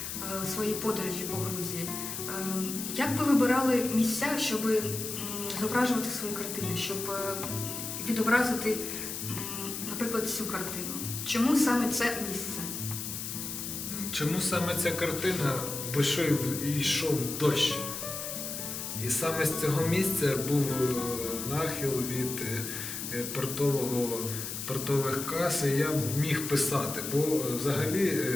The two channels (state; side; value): noise; left; hiss, 6 dB below the sound